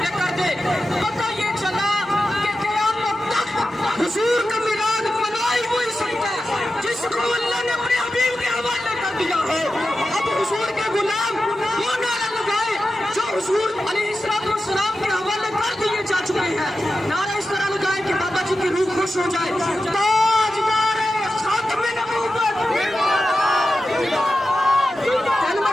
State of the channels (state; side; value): normal; both; correlation 0.92